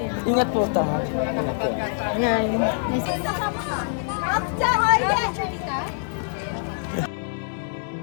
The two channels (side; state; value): right; silent; digital silence